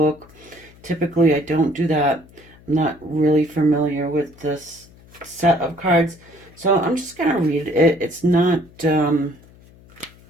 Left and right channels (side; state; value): left; noise; hum, 25 dB below the sound